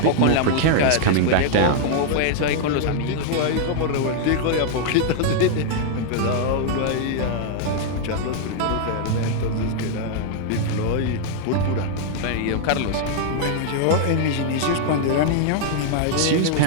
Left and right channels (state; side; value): different; both; correlation -0.01